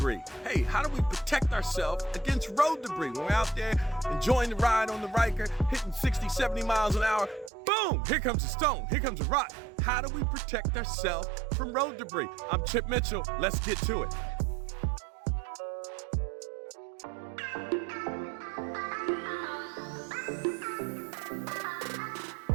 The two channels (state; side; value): drops out; left; at 7.5 s